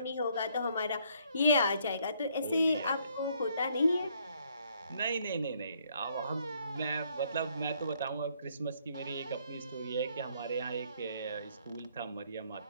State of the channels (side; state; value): both; inverted; correlation -0.68